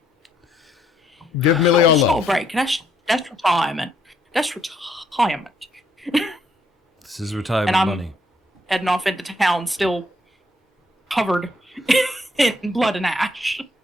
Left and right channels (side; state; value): both; normal; correlation 0.70